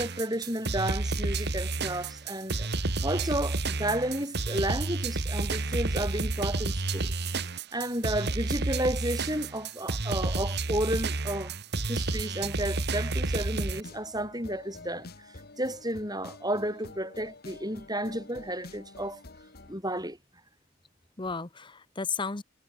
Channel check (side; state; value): both; normal; correlation 0.62